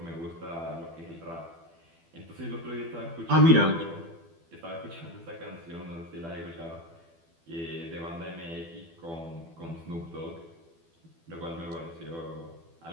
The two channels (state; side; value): late; left; 12 ms